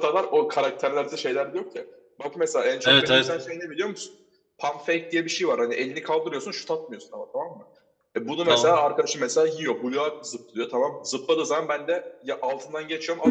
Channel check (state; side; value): identical; both; correlation 1.00